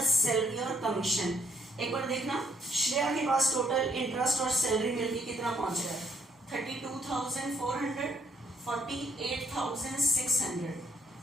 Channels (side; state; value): both; normal; correlation 0.67